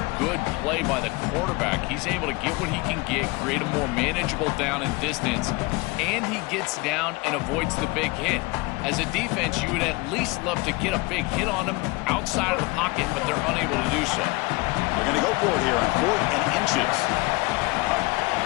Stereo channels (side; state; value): right; quieter; 24.7 dB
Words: good play by the quarterback. He's able to get what he can get, create a more manageable down and distance, and he gets down and avoids the big hit. As a defense, you would at least love to get a big hit on him outside of the pocket, but they're unable to do so. They're going to go for it here on 4th and inches.